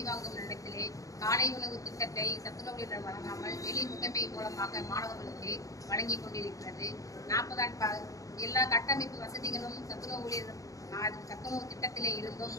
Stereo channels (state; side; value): late; right; 0.16 ms